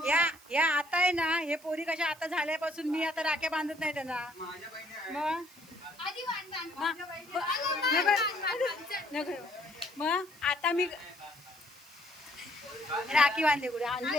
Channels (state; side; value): noise; right; hiss, 24 dB below the sound